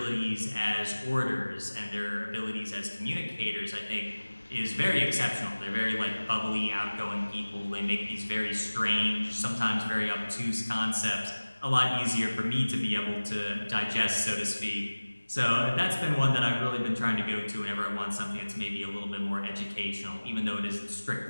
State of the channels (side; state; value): both; inverted; correlation -1.00